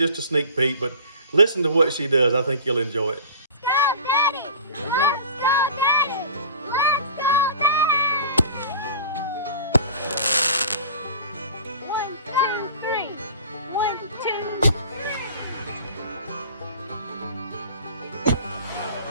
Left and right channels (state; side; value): inverted; both; correlation -0.41